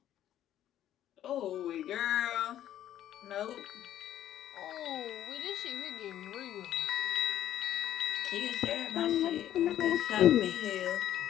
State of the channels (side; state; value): right; quieter; 11.8 dB